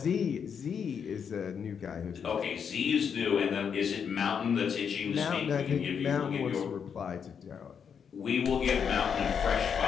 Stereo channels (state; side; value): quieter; right; 7.1 dB